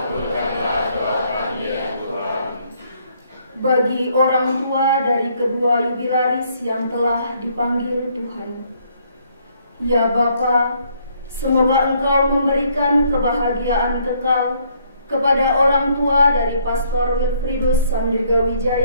doa kami ya Tuhan. Bagi orang tua dari kedua jubilaris yang telah dipanggil Tuhan, ya Bapa, semoga Engkau memberikan kebahagiaan kekal kepada orang tua dari Pastor Wilfridus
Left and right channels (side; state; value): both; inverted; correlation -0.67